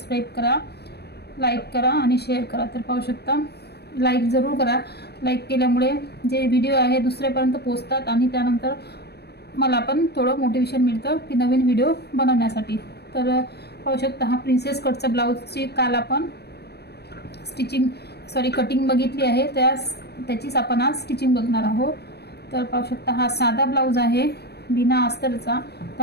करा, लाईक करा आणि शेअर करा। तर पाहू शकता, लाईक जरूर करा। लाईक केल्यामुळे जे व्हिडिओ आहे दुसऱ्यापर्यंत पोहोचतात आणि त्यानंतर मला पण थोडं मोटिवेशन मिळतं की नवीन व्हिडिओ बनवण्यासाठी। तर पाहू शकता, हा प्रिन्सेस कटचा ब्लाउजची काल आपण कटिंग बघितली आहे, त्याचीच आपण आज स्टिचिंग बघणार आहोत। तर पाहू शकता, हा साधा ब्लाउज आहे बिना अस्तरचा।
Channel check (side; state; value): right; late; 0.48 ms